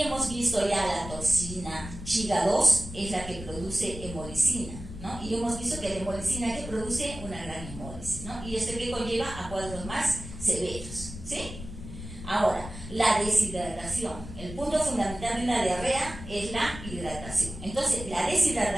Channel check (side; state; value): left; noise; rumble, 11 dB below the sound